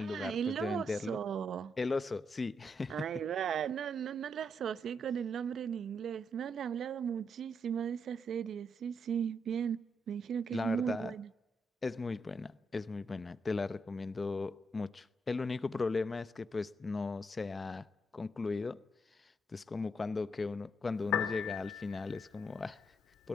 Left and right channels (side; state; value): both; normal; correlation 0.79